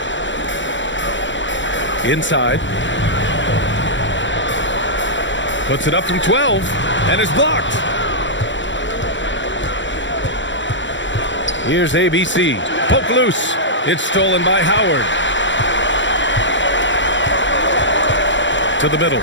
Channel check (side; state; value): right; late; 0.54 ms